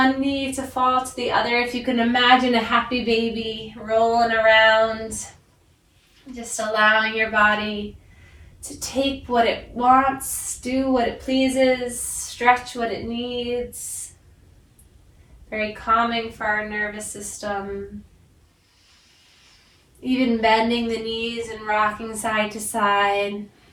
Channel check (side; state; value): both; identical; correlation 1.00